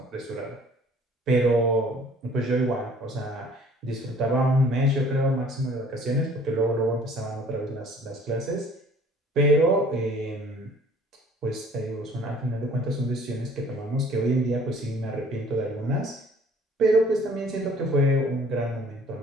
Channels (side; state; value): both; normal; correlation 0.54